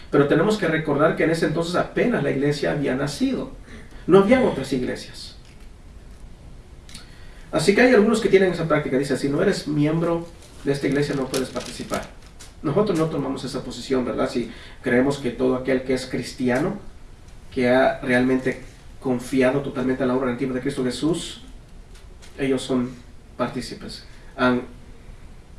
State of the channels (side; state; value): both; identical; correlation 1.00